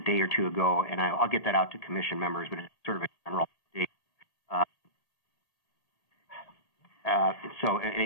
day or two ago, and I'll get that out to Commission members, but it's sort of a general update. So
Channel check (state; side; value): late; right; 1.8 ms